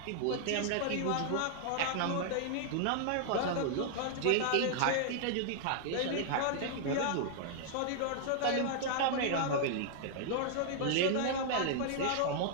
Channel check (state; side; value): different; both; correlation -0.01